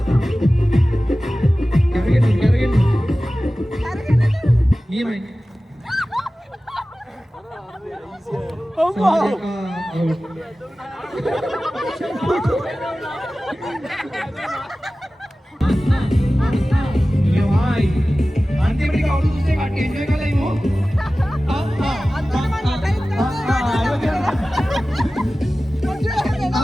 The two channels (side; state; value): both; normal; correlation 0.96